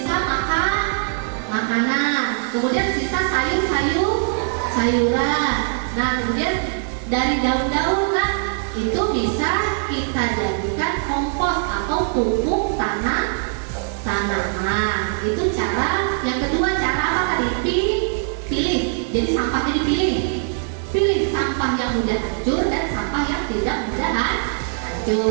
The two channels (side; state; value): left; silent; digital silence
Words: makanan, kemudian sisa sayuran. Nah, kemudian dari daun-daunan itu bisa kita jadikan kompos atau pupuk tanaman. Itu cara yang kedua. Cara apa tadi? Pilih. Jadi sampahnya dipilih. Pilih sampah yang mudah hancur dan sampah yang tidak mudah